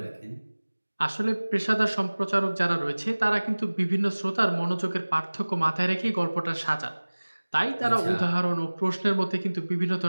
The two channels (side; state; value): both; inverted; correlation -1.00